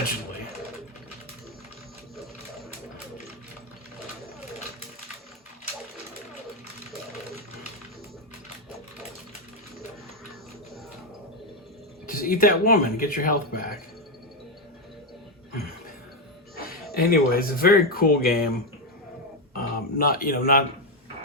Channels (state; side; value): normal; both; correlation 0.06